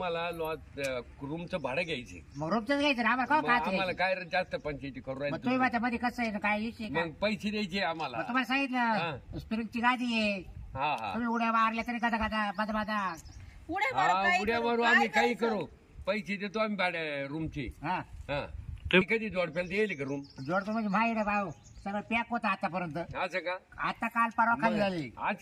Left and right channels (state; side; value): identical; both; correlation 1.00